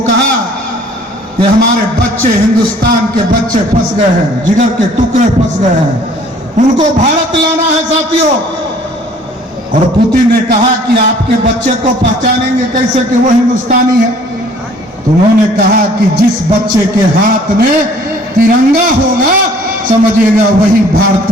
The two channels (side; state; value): both; normal; correlation 0.55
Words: कहा कि हमारे बच्चे, हिंदुस्तान के बच्चे फंस गए हैं, जिगर के टुकड़े फंस गए हैं, उनको भारत लाना है साथियों। और पुतिन ने कहा कि आपके बच्चे को पहचानेंगे कैसे कि वो हिंदुस्तानी है? तो उन्होंने कहा कि जिस बच्चे के हाथ में तिरंगा होगा समझिएगा वही